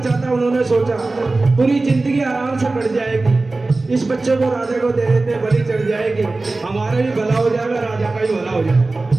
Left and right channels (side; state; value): left; quieter; 3.3 dB